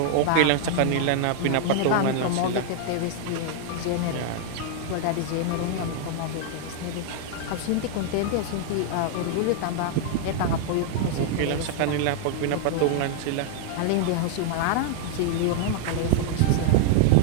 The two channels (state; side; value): different; both; correlation 0.00